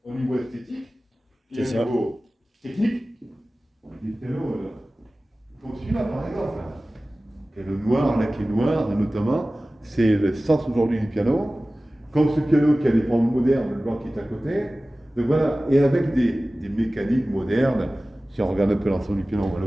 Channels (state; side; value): normal; both; correlation 0.97